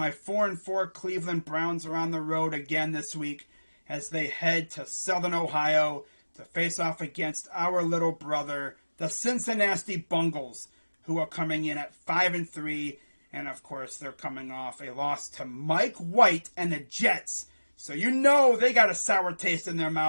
4-4 Cleveland Browns are on the road again this week as they head to Southern Ohio to face off against our little brother, the Cincinnati Bengals, who are coming in at 5-3, and of course they're coming off a loss to Mike White and the Jets. So you know they got a sour taste in their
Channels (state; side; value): inverted; both; correlation -1.00